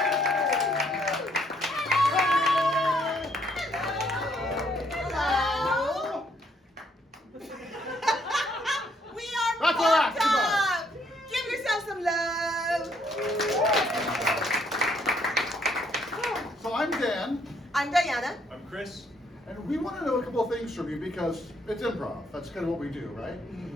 We are PopTop! Give yourself some love! So I'm Dan. I'm Diana. I'm Chris. And we want to know a couple of things from you because it's improv. That's kind of what we do, right?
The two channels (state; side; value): normal; both; correlation 0.69